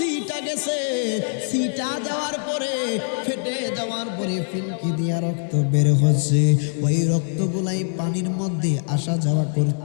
গেছে, সিটা যাওয়ার পরে ফেটে যাওয়ার পরে ফিনকি দিয়া রক্ত বের হচ্ছে। ওই রক্তগুলাই পানির মধ্যে আসা যাওয়া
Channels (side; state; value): right; silent; 60 dB below the other